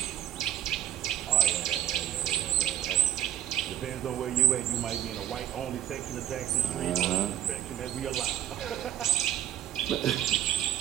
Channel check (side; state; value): left; quieter; 11.9 dB